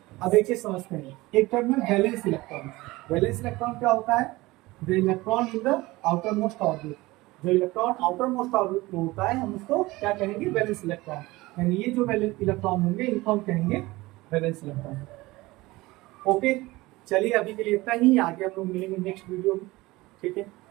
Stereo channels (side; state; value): left; quieter; 20.3 dB